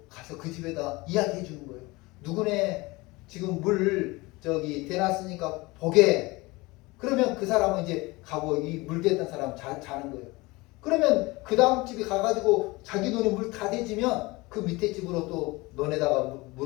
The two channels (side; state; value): right; quieter; 22.8 dB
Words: 가서 그 집에다 이야기해 주는 거예요. 누구네 지금 물 대놨으니까 보게. 그러면 그 사람은 이제 가고 이 물 댔던 사람 자는 거예요. 그러면 그 다음 집에 가가지고 자기 논에 물 다 대지면 그 밑에 집으로 또 논에다가